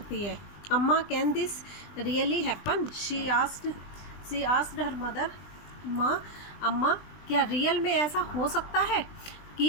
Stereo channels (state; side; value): late; right; 20 ms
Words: है। अम्मा, can this really happen? She asked her mother. अम्मा, क्या रियल में ऐसा हो सकता है